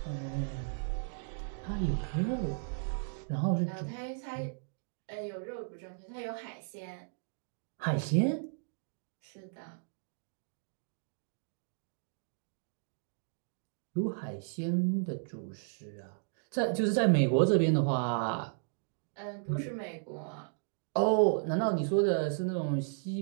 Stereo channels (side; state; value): left; silent; digital silence